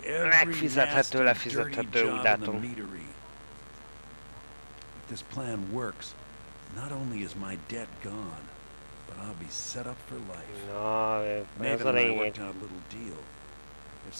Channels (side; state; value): both; inverted; correlation -1.00